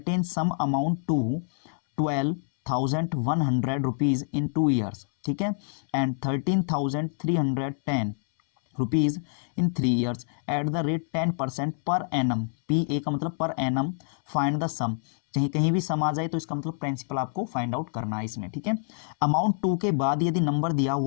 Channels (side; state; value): right; silent; 60 dB below the other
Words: sum amount to 12,100 rupees in 2 years, ठीक है, and 13,310 rupees in 3 years at the rate 10% per annum. P A का मतलब पर एनम। फाइंड द सम, कहीं कहीं भी सम आ जाए तो इसका मतलब प्रिंसिपल आपको फाइंड आउट करना है इसमें। ठीक है, अमाउंट 2 के बाद यदि नंबर दिया